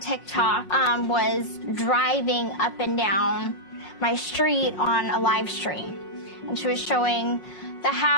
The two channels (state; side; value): late; right; 5.5 ms